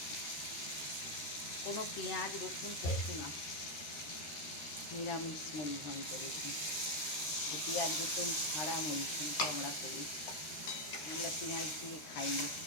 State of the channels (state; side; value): late; right; 13 ms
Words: কোনো পেঁয়াজ রসুন কিছু না, নিরামিষ মুড়ি ঘন্ট। দেখুন, পেঁয়াজ রসুন ছাড়া মুড়ি ঘন্ট আমরা করি, আমরা পেঁয়াজ দিয়ে খাই না।